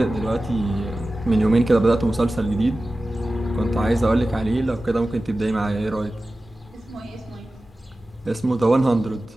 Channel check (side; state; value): both; normal; correlation 0.95